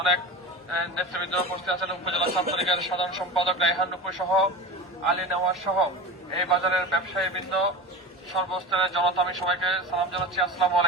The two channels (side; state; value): both; normal; correlation 0.29